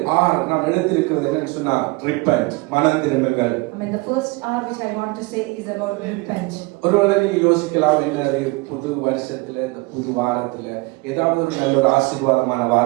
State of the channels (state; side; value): quieter; left; 24.6 dB